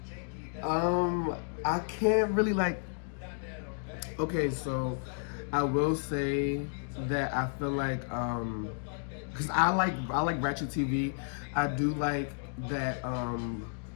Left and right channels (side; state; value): right; silent; digital silence